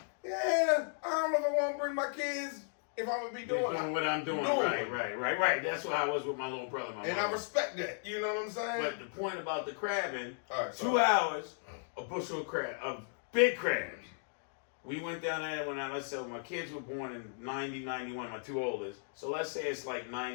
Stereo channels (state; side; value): silent; right; digital silence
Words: yeah, I don't know if I want to bring my kids if I'm gonna be doing what I'm doing. Right. That's what I was with my little brother. I respect that. You know what I'm saying? But the point about the crabbing, right, 2 hours, a bushel of crab, of big crabs. We went down there when let's say my kids were born in 90, 91, my two oldest. So let's say it's like